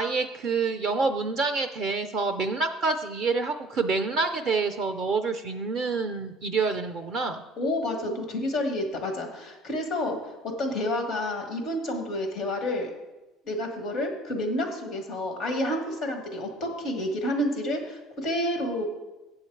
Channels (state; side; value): normal; both; correlation 0.49